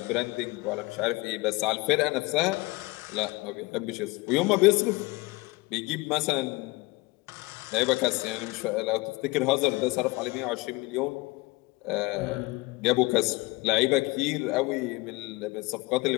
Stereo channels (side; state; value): right; quieter; 23.3 dB